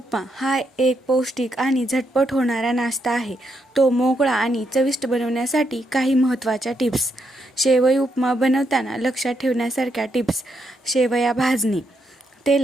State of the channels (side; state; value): both; normal; correlation 0.79